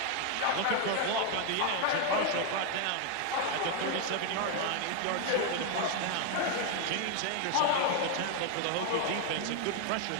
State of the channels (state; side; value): different; both; correlation 0.01